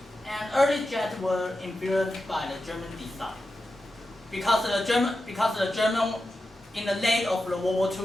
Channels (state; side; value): normal; both; correlation 0.91